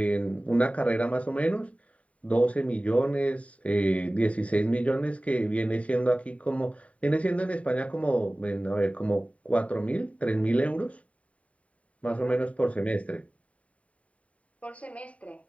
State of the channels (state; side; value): late; right; 0.066 ms